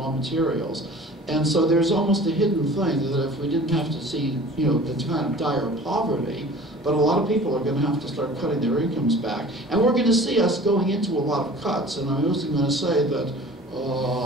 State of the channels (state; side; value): normal; both; correlation 0.44